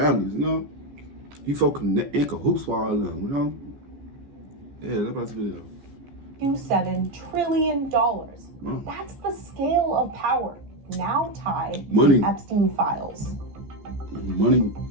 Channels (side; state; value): left; late; 14 ms